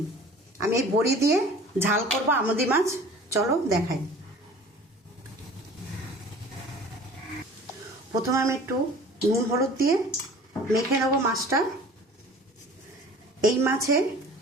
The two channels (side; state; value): both; normal; correlation 0.45